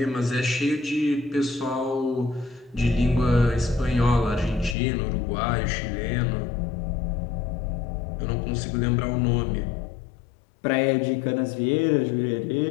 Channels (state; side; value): drops out; right; at 4.8 s